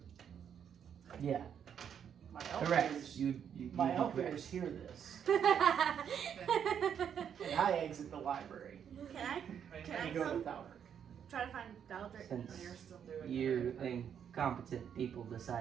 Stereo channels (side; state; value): left; quieter; 8.3 dB